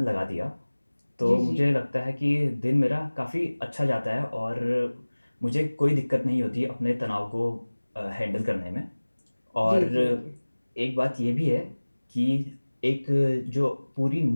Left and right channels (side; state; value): both; inverted; correlation -1.00